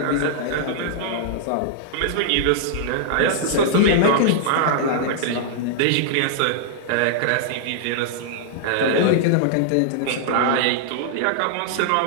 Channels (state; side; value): different; both; correlation -0.01